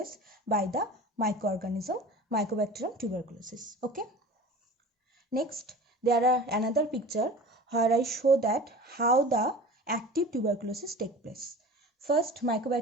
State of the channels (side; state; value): both; normal; correlation 0.38